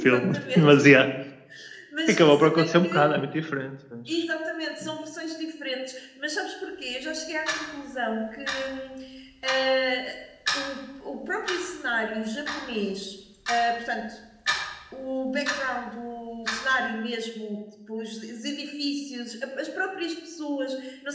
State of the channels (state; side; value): identical; both; correlation 1.00